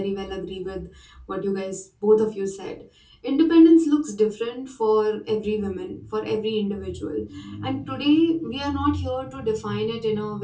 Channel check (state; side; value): identical; both; correlation 1.00